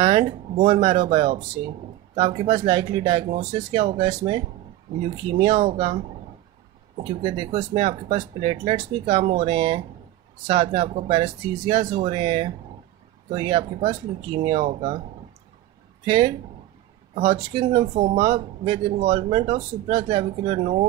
bone marrow biopsy. तो आपके पास लाइकली डायग्नोसिस क्या होगा? इसमें ल्यूकीमिया होगा, क्योंकि देखो इसमें आपके पास प्लेटलेट्स भी कम हो रहे हैं, साथ में आपको पैरेस्थीसियाज हो रहे हैं, तो ये आपके पास ल्यूकीमिया होगा. फिर Hodgkin lymphoma with involvement of supraclavicular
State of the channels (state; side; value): quieter; left; 14.7 dB